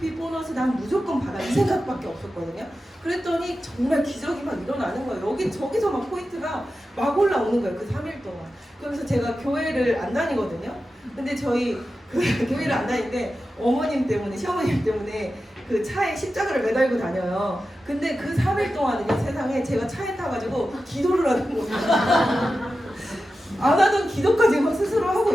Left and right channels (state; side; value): normal; both; correlation 0.92